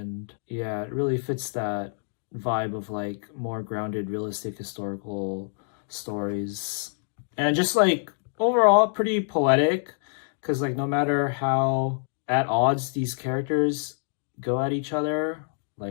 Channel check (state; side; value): silent; right; digital silence